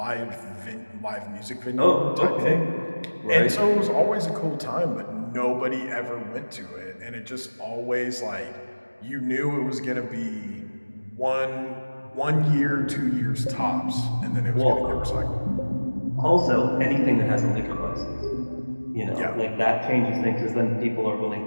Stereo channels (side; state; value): both; inverted; correlation -1.00